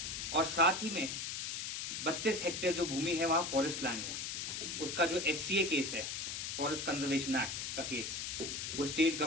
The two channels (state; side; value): noise; left; hiss, 3 dB below the sound